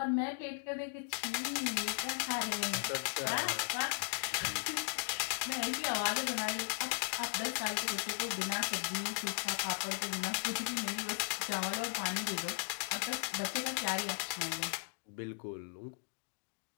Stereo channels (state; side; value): silent; right; digital silence